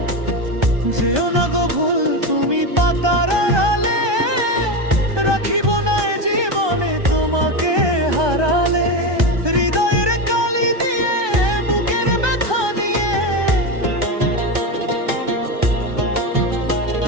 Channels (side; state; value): left; late; 1.2 ms